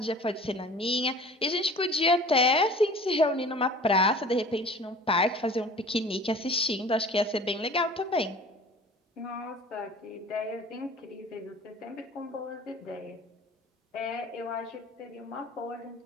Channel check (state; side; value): normal; both; correlation 0.44